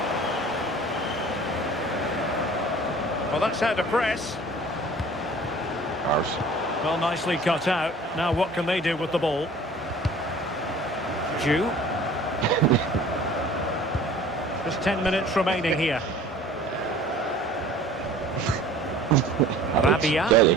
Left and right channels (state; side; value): normal; both; correlation 0.47